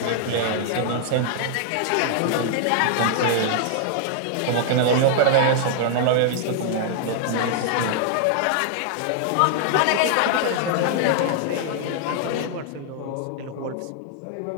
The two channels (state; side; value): different; both; correlation -0.01